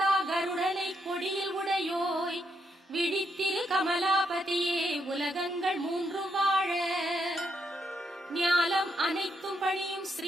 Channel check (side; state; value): both; normal; correlation 0.78